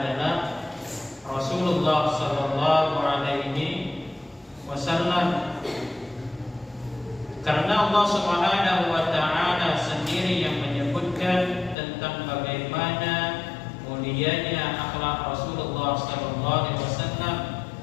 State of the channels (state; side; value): drops out; right; at 11.8 s